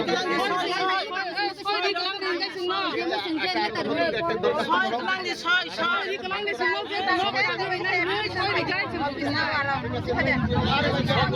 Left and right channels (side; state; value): both; identical; correlation 1.00